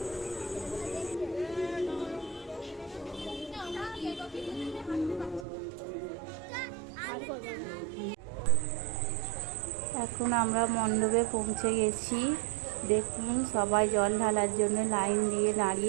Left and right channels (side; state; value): left; drops out; at 5.5 s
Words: এখন আমরা মণ্ডপে পৌঁছে গেছি। দেখুন, সবাই জল ঢালার জন্য লাইন দিয়ে